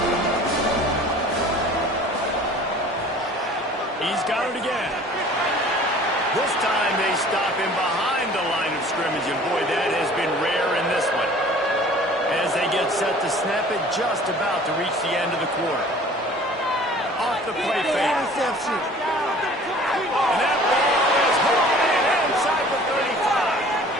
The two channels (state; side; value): normal; both; correlation 0.48